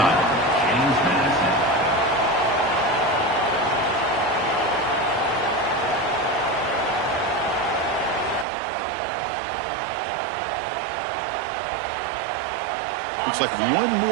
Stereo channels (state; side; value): drops out; left; at 8.5 s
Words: Looks like one